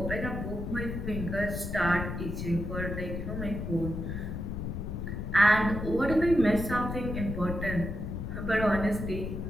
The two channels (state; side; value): noise; left; rumble, 4 dB below the sound